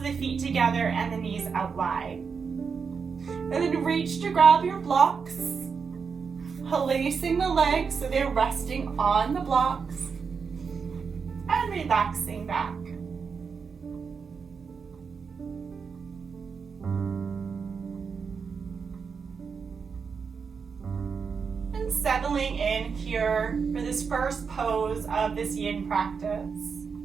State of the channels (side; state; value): left; quieter; 5.7 dB